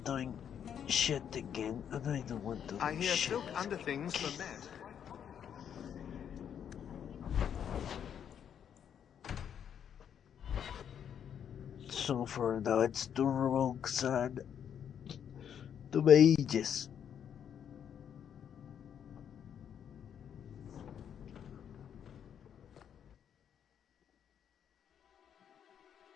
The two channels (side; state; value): right; quieter; 8.7 dB